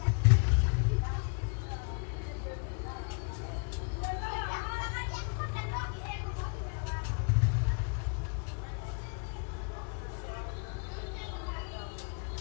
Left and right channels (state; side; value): quieter; right; 39.9 dB